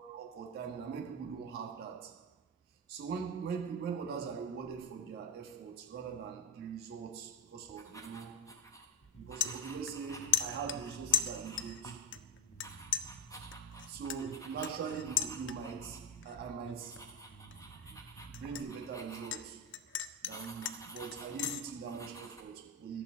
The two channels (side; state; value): both; normal; correlation 0.08